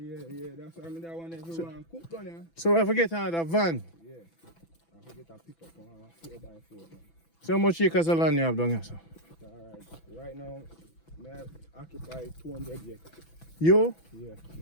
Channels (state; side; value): late; right; 6.0 ms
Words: That's why I mean that one everyone cook down here. So I forget another van. Yeah. I forget a pickup on 4x4. Man. So how much acres of land you have down here, sir? Alright. Right now, I occupy 200 acres. You? Yeah,